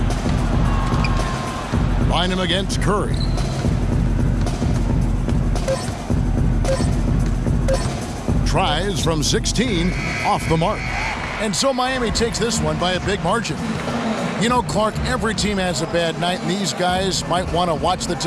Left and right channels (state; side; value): identical; both; correlation 1.00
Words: Bynum against Curry. Tries from 16, off the mark. And so Miami takes this one by a big margin. You know, Clark, every team has a bad night, and these guys might want to watch the